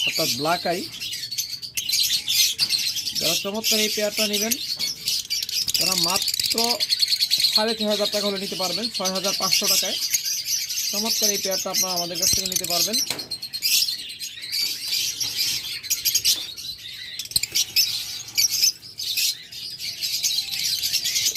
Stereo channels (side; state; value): both; identical; correlation 1.00